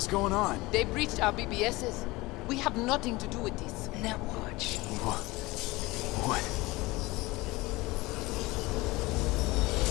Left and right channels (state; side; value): quieter; right; 21.4 dB